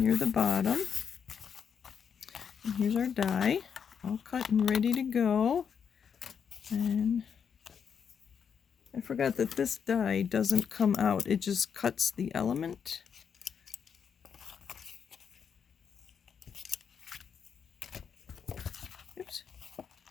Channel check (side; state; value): right; quieter; 7.1 dB